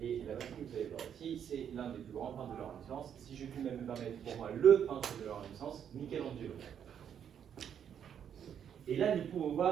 Et la machine que vous allez voir ici, c'est l'un des plus grands peintres de la Renaissance. Si je puis même me permettre, pour moi, le peintre de la Renaissance, Michelangelo. Et là, nous pouvons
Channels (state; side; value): quieter; left; 8.6 dB